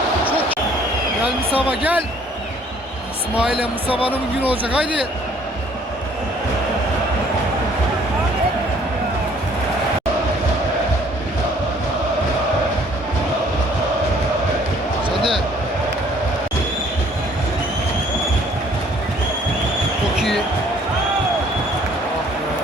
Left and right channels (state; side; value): normal; both; correlation 0.59